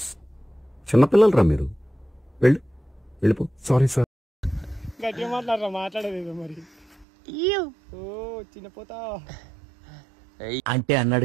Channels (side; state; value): left; drops out; at 7.1 s